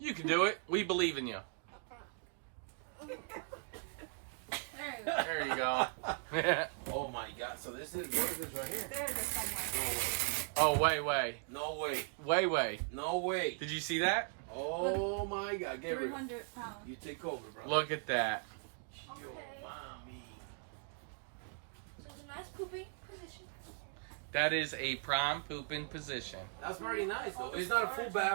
can do it. We believe in you. There you go. There you go. Oh my God! So this is what is this right here? There it is somewhere. Oh, way. No way! Way. No way! Did you see that? Oh my God, Gabriel! 300 pounds. You take over, bro. Look at that. Yo, mommy. So it's a nice pooping position. That is a prime pooping position. That's very nice though. It's not a full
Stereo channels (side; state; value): left; silent; 52 dB below the other